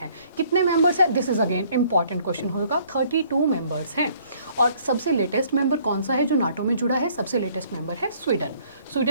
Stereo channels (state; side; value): inverted; both; correlation -0.60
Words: कितने मेंबर्स हैं? This is again important question होगा। 32 मेंबर्स हैं और सबसे लेटेस्ट मेंबर कौन सा है जो नाटो में जुड़ा है? सबसे लेटेस्ट मेंबर है स्वीडन।